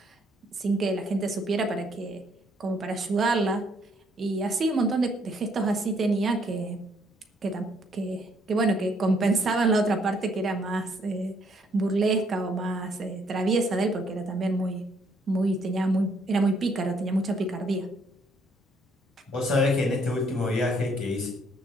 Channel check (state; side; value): normal; both; correlation 0.68